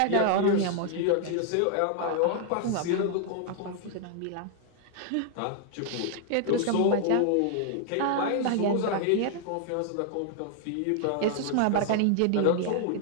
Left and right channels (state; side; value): different; both; correlation 0.00